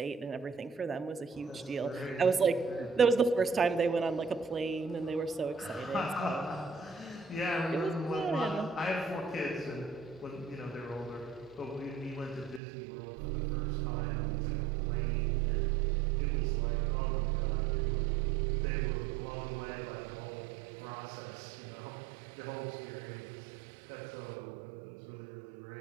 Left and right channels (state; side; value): drops out; left; at 12.6 s